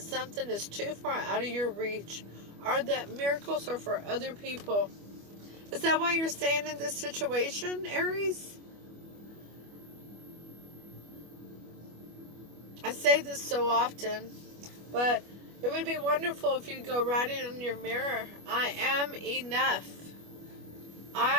is too far out of your reach, or that miracles are for other people. Is that why you're staying in this situation, Aries? I say this so often, but it would be wonderful if you go write it on your mirror. I am enough.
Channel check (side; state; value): left; late; 25 ms